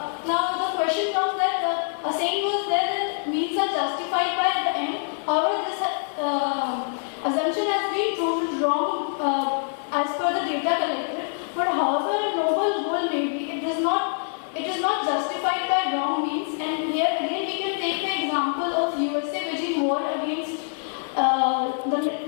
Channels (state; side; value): silent; right; digital silence